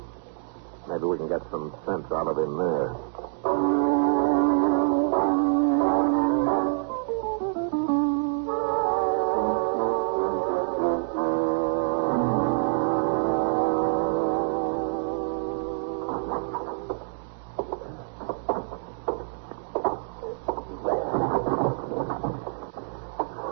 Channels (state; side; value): silent; left; digital silence